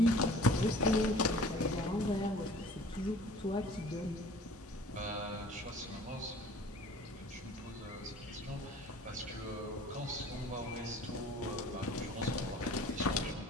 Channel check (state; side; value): normal; both; correlation 0.48